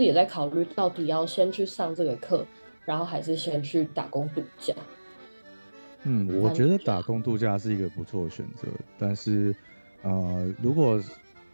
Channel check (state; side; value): inverted; both; correlation -1.00